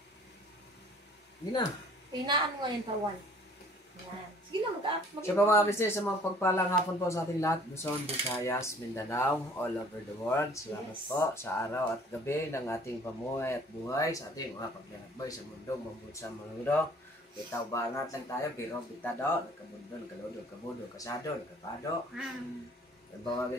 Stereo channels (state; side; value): normal; both; correlation 0.53